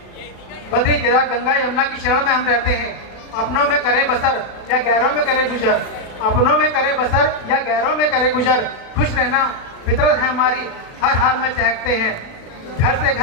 बद्री केदार गंगा यमुना की शरण में हम रहते हैं, अपनों में करे बसर या गैरों में करे गुजर, अपनों में करे बसर या गैरों में करे गुजर। खुश रहना फितरत है हमारी, हर हाल में चहकते हैं। घर से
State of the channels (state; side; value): late; right; 36 ms